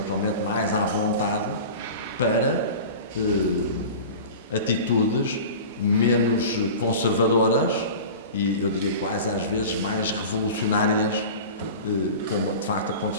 mais à vontade para atitudes menos conservadoras e, eu diria, quase às vezes mais revolucionárias, como de facto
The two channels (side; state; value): both; inverted; correlation -0.35